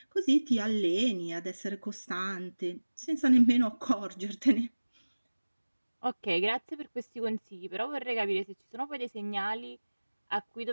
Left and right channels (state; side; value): inverted; both; correlation -1.00